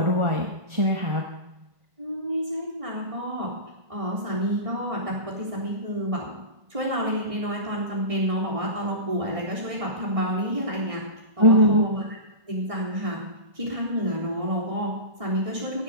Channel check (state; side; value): late; left; 1.6 ms